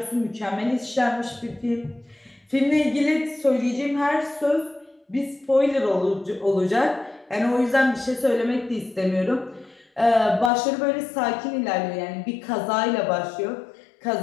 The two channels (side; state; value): right; drops out; at 10.5 s